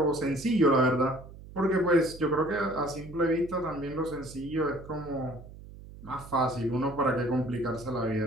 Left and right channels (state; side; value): noise; right; hum, 17 dB below the sound